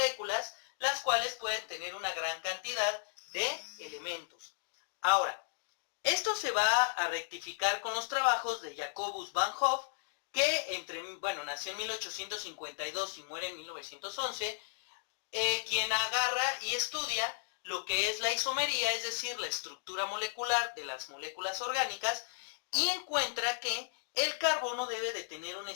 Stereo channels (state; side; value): silent; right; digital silence